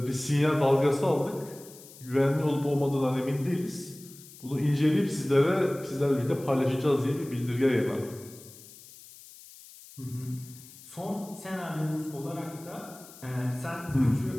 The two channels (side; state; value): left; noise; hiss, 19 dB below the sound